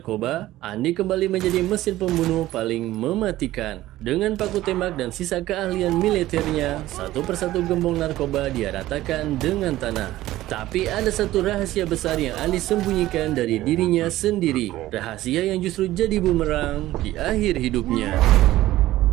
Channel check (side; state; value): left; quieter; 15.6 dB